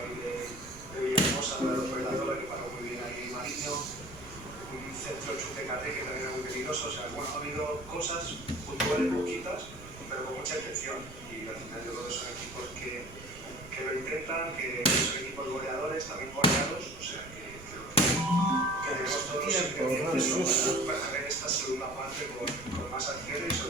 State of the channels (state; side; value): noise; right; rumble, 17 dB below the sound